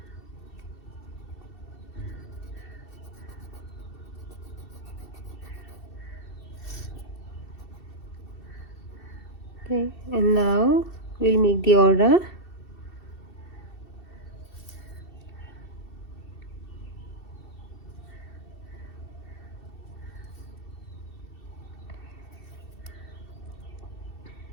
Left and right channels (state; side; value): late; right; 2.7 ms